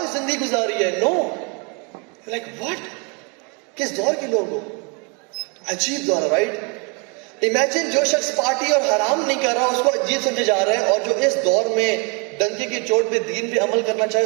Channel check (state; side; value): quieter; left; 33.0 dB